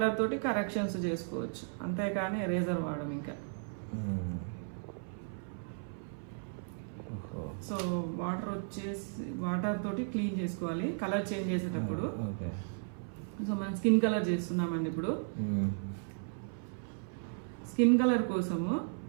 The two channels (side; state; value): left; silent; 54 dB below the other